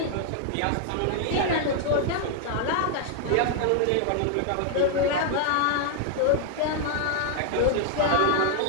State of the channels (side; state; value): both; different; correlation 0.00